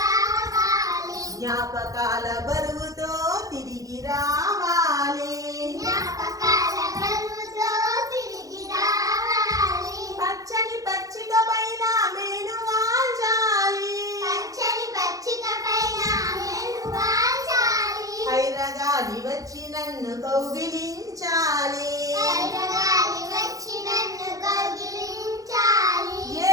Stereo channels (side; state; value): left; late; 0.17 ms